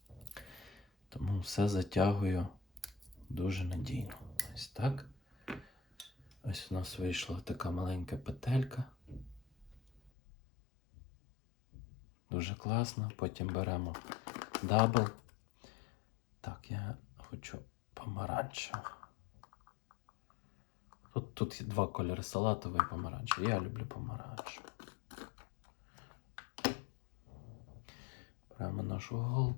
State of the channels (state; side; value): drops out; right; at 10.1 s